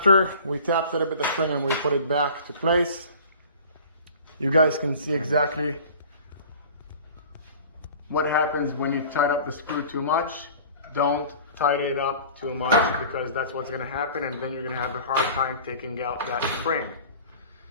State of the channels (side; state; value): both; inverted; correlation -0.44